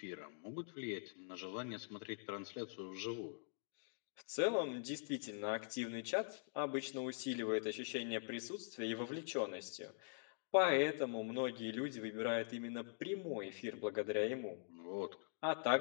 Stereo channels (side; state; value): right; silent; digital silence